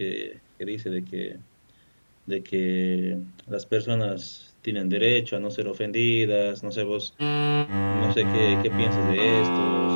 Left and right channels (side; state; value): both; inverted; correlation -1.00